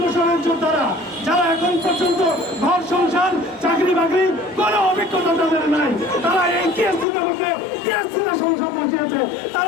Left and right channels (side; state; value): right; drops out; at 7.1 s